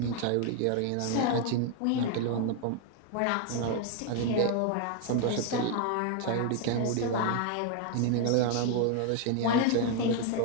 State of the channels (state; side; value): different; both; correlation 0.00